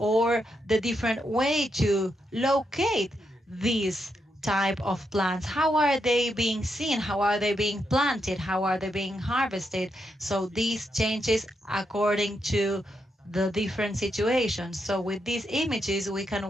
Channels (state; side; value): normal; both; correlation 0.82